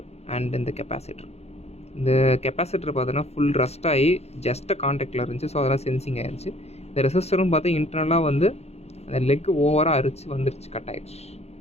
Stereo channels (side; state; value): right; late; 0.31 ms